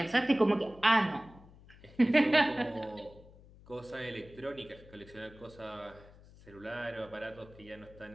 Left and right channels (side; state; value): left; noise; hum, 22 dB below the sound